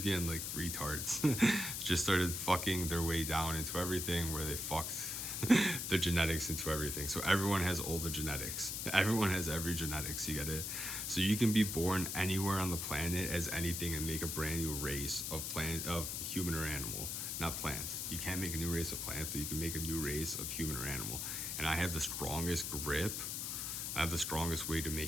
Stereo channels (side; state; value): left; noise; hiss, 3 dB below the sound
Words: like retards just started fucking their way down into everything, where they fucked the genetics into everything. So everyone has all the genetics. Everyone has every genetics. You get it? So you can be born anywhere on the planet as anything and make a brand new race of human or animal. Not plant. You can't make a new race of plant, but you can make a new race of human or animal. And I have the strongest grip. I have the strongest way to make